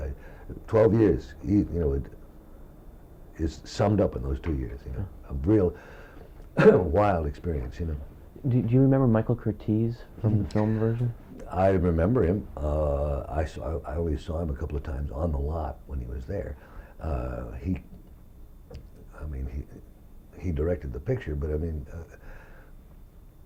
12 years, you know, it is summed up in those 2 years. You know, a real wild experience. You know. Do you remember Michael Curtiz from the film version? I remember him. I only saw him a couple of times on the lot when he was there. He directed the picture, but I mean,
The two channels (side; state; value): both; identical; correlation 1.00